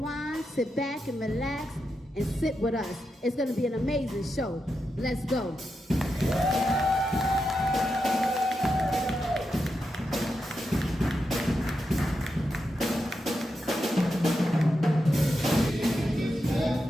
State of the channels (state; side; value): normal; both; correlation 0.87